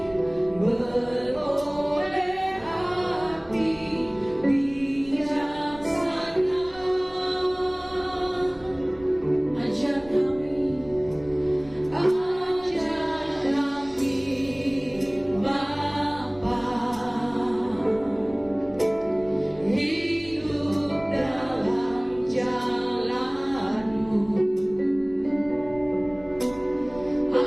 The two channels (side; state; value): right; noise; rumble, 23 dB below the sound